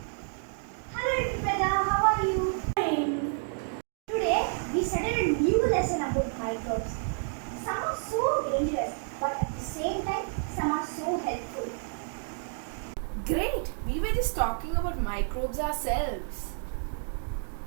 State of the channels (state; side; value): silent; left; 58 dB below the other